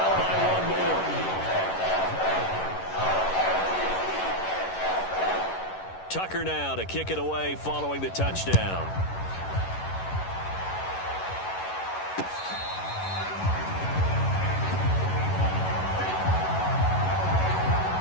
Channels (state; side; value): late; right; 11 ms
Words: by 1 more. Tucker now to kick it away following the touchdown.